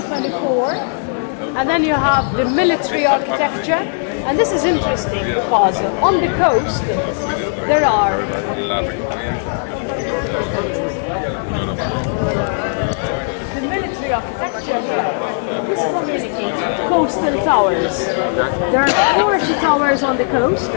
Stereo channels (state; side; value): silent; right; digital silence